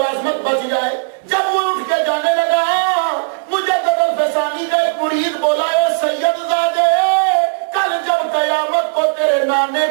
بچ جائے. جب وہ اٹھ کے جانے لگا، مجدد الفسانی کا ایک مرید بولا اے سید زادے، کل جب قیامت کو تیرے نانے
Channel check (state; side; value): silent; left; digital silence